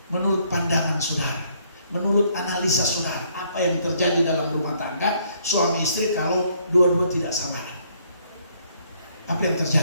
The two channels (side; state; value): both; inverted; correlation -0.67